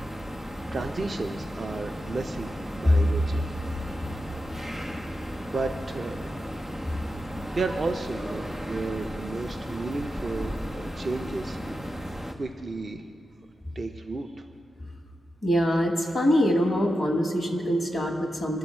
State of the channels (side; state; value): both; normal; correlation 0.90